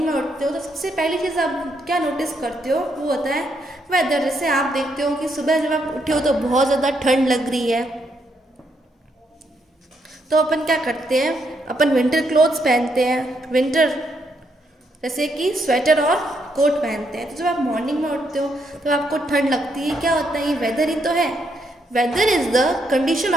में उठते हो तो सबसे पहली चीज़ आप क्या नोटिस करते हो वो होता है वेदर। जैसे आप देखते हो कि सुबह जब आप उठे हो तो बहुत ज़्यादा ठंड लग रही है, तो अपन क्या करते हैं? अपन विंटर क्लोथ्स पहनते हैं, विंटर जैसे कि स्वेटर और कोट पहनते हैं। तो जब आप मॉर्निंग में उठते हो तो आपको ठंड लगती है, क्या होता है? ये वेदर ही तो है। Weather is the condition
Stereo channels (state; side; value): normal; both; correlation 0.76